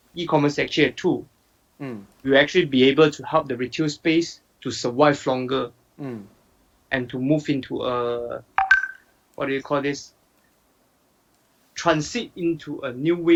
e-commerce is actually a tool. Will actually be able to help the retail space to survive longer and to move into a, what do you call this? Transit into a new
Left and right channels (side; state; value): both; identical; correlation 1.00